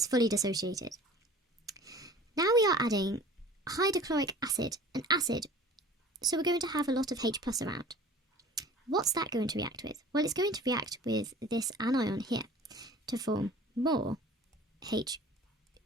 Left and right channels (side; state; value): both; normal; correlation 0.45